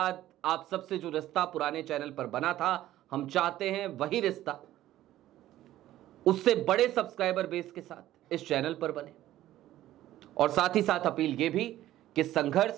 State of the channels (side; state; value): left; quieter; 14.1 dB